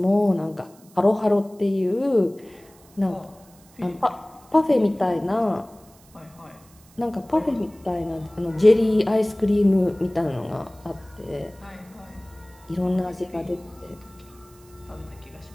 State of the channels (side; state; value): right; noise; hiss, 27 dB below the sound